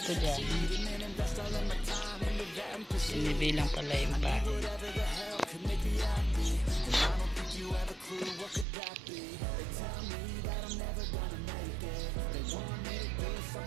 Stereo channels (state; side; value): drops out; left; at 8.7 s